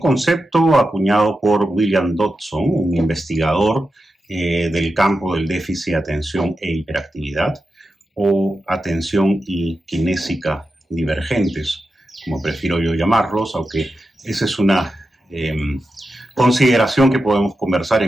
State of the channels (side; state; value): both; normal; correlation 0.90